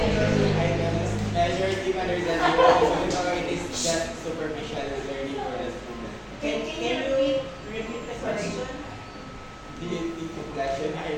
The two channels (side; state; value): both; identical; correlation 1.00